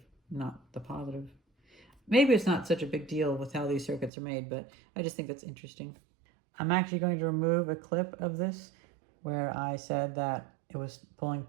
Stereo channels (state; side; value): drops out; left; at 4.1 s